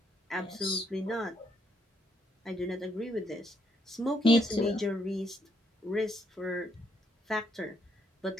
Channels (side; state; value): both; normal; correlation 0.73